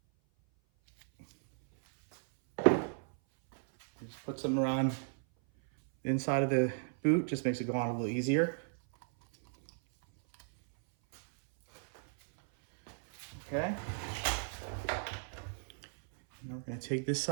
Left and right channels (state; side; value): silent; left; 55 dB below the other